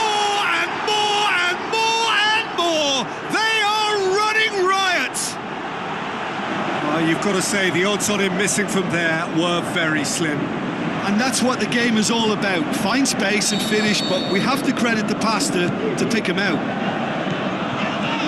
and more and more and more! They are running riot! You've got to say, the odds on him missing from there were very slim. And that's what the game is all about. Find space and finish, but we have to credit the pasta to pick him out.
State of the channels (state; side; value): identical; both; correlation 1.00